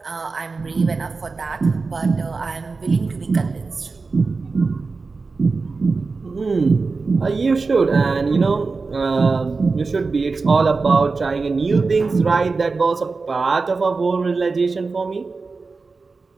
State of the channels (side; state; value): left; quieter; 4.2 dB